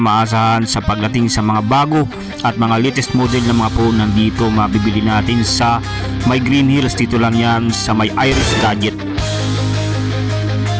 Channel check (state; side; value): identical; both; correlation 1.00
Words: sa pagdating sa mga bago at mga latest model ng mga phone, nandito mabibili natin sa may Green Hills. Dito lang yan sa may Iris Gadget.